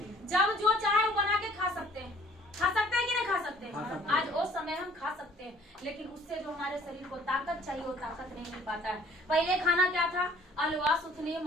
जब जो चाहे वो बना के खा सकते हैं, कि नहीं खा सकते हैं? आज वो समय हम खा सकते हैं, लेकिन उससे जो हमारे शरीर को ताकत चाहिए वो ताकत नहीं मिल पाता है। पहले खाना क्या था? अलवा, सुथनी,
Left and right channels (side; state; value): both; normal; correlation 0.56